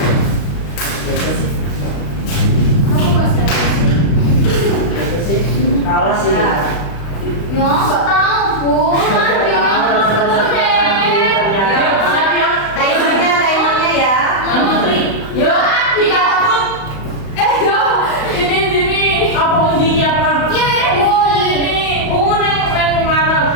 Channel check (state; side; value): late; right; 35 ms